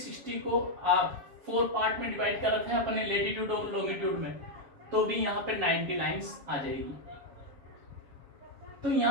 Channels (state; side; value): late; left; 7.2 ms